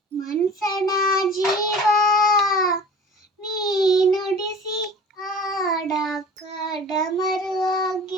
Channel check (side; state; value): both; normal; correlation 0.41